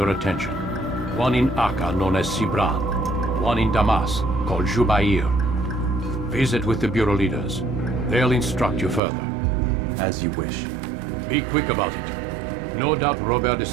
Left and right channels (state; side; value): drops out; left; at 9.0 s